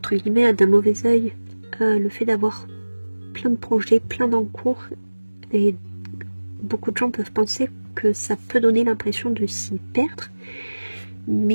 guillemets, d'un mauvais œil le fait d'avoir plein de projets, plein d'encours, et beaucoup de gens peuvent penser que ça peut donner l'impression de s'y perdre,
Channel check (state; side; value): inverted; both; correlation -1.00